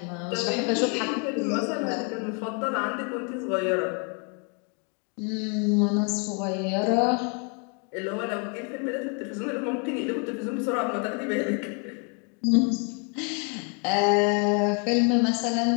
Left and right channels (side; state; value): right; quieter; 37.3 dB